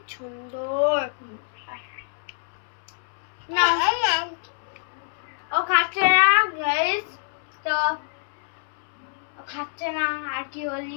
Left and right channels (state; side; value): silent; right; 61 dB below the other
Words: সুন্দর। না ও খাচ্ছে না গাইস, তো ও খাচ্ছে না। আর কি